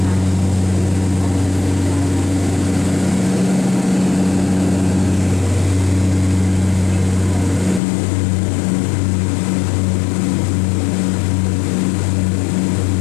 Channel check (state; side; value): drops out; right; at 7.8 s